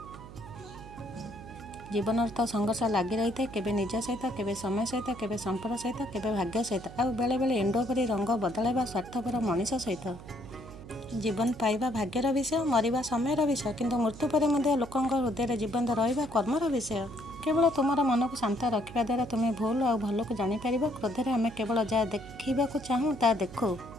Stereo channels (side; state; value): right; noise; hum, 15 dB below the sound